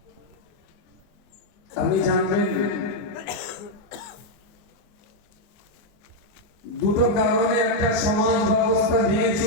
আপনি জানবেন দুটো কারণে একটা সমাজ ব্যবস্থা ভেঙে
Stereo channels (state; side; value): late; right; 23 ms